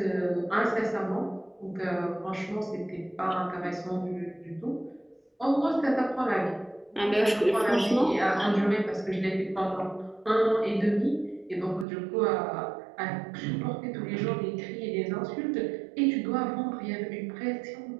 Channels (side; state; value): left; drops out; at 11.9 s